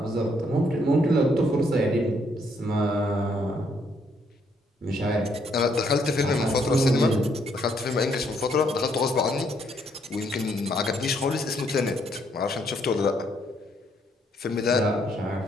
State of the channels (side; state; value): both; normal; correlation 0.71